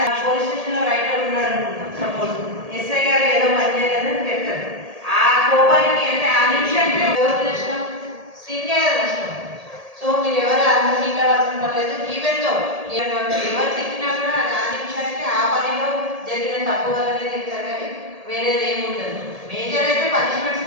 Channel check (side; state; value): left; late; 1.8 ms